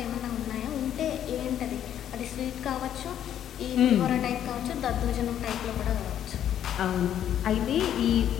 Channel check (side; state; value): right; quieter; 10.4 dB